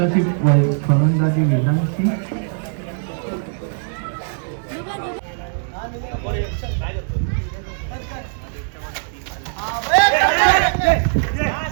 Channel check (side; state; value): left; silent; digital silence